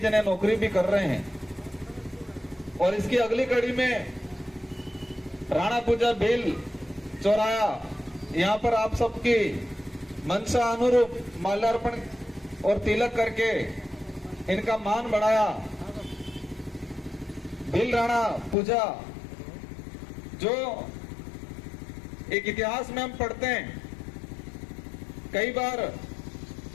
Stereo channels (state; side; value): drops out; right; at 18.6 s